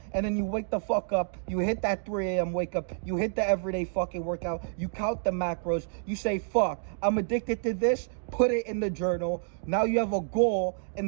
And then you wake the fuck up, you hit that 3 a.m. wake up, you hit the everyday fucking workout, you count the macros, you say, fuck, I'm addicted to this, put it in the journal. Now you have a goal,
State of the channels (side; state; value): left; silent; digital silence